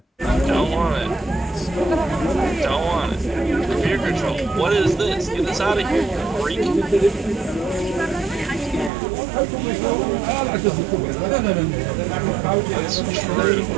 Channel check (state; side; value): drops out; left; at 8.9 s